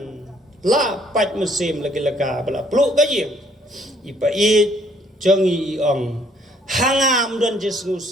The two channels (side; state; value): both; normal; correlation 0.64